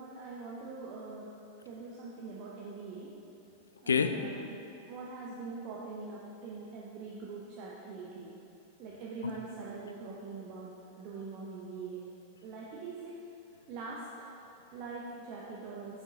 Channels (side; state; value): both; inverted; correlation -0.34